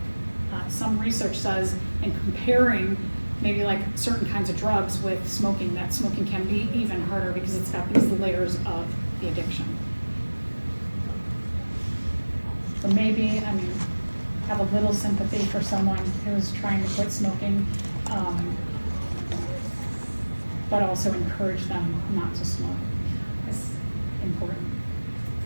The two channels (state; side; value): inverted; both; correlation -1.00